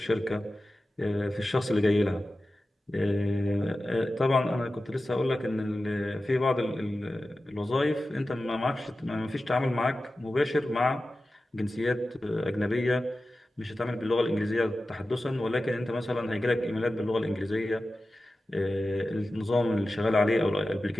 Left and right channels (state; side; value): normal; both; correlation 0.94